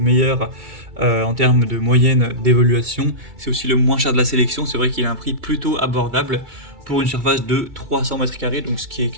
en termes de moyenne d'évaluation. C'est aussi le moins cher de la sélection, c'est vrai qu'il a un prix plutôt abordable pour une surface de 300 mètres carrés, donc ce qui est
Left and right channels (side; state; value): left; late; 2.3 ms